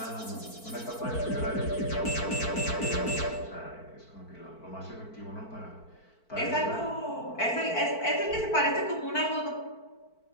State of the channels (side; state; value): right; late; 4.5 ms